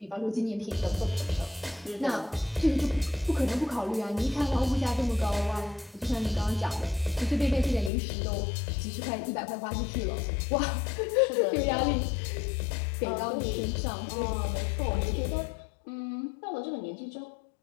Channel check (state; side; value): drops out; right; at 7.9 s